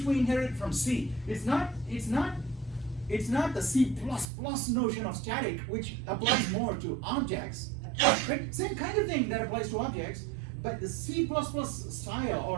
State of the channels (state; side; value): drops out; left; at 4.2 s